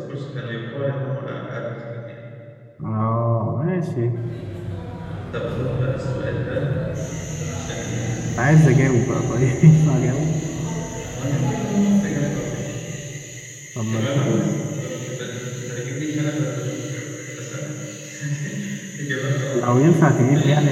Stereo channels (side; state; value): both; identical; correlation 1.00